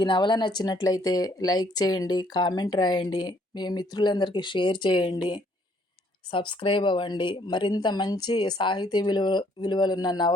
నవల నచ్చినట్లయితే లైక్ చేయండి, కామెంట్ రాయండి, మీ మిత్రులందరికీ షేర్ చేయండి, సబ్స్క్రైబ్ అవ్వండి. మరింత మంచి సాహితీ విలువలున్న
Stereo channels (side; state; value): both; normal; correlation 0.65